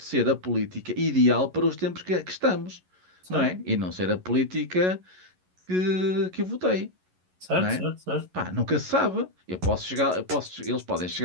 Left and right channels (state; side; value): late; left; 11 ms